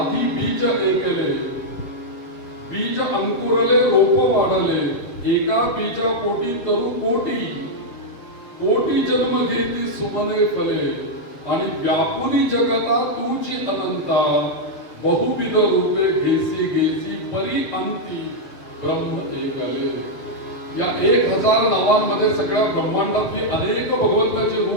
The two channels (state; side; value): late; right; 7.4 ms